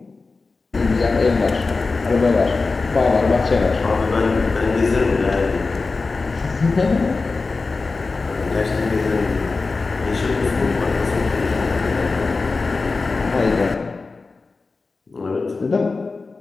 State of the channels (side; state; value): right; quieter; 4.0 dB